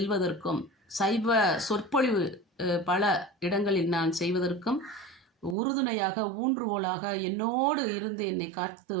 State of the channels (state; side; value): drops out; left; at 5.6 s